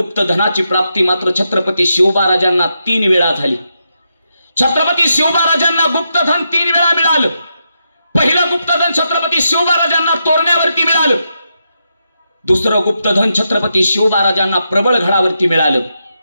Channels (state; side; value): inverted; both; correlation -0.84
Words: प्राप्ती मात्र छत्रपती शिवबा राजांना 3 वेळा झाली. छत्रपती शिवबा राजांना गुप्तधन 3 वेळा मिळालं. पहिलं गुप्तधन छत्रपती शिवबा राजांना तोरण्यावरती मिळालं. दुसरं गुप्तधन छत्रपती शिवबा राजांना प्रबळगडावरती मिळालं.